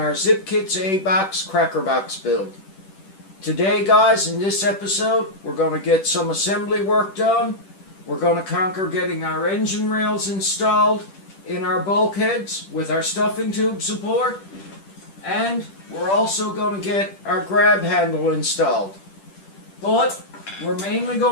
Zippkits A-Box Crackerbox build. Today, guys, in this episode, we're going to get some assembly work done. We're going to conquer getting our engine rails installed in our bulkheads with our stuffing tube support. And we're also going to get our grab handle installed. But we're mainly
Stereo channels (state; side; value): late; right; 10 ms